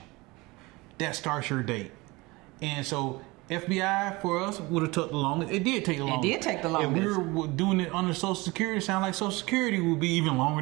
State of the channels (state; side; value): quieter; left; 23.1 dB